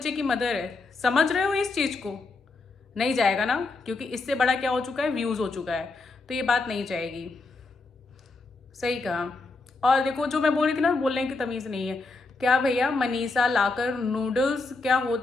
की मदर है, समझ रहे हो इस चीज़ को? नहीं जाएगा ना, क्योंकि इससे बड़ा क्या हो चुका है, व्यूज़ हो चुका है। तो ये बात नहीं जाएगी। सही कहा। और देखो जो मैं बोल रही थी ना, बोलने की तमीज़ नहीं है। क्या भैया, मनीषा लाकर नूडल्स क्या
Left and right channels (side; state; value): right; quieter; 3.6 dB